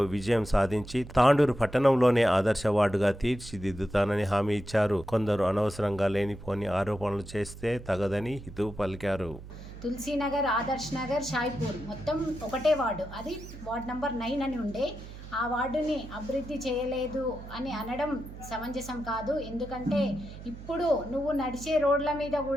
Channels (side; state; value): right; noise; hum, 14 dB below the sound